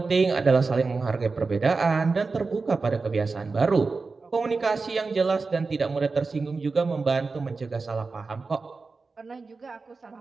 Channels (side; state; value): left; quieter; 4.2 dB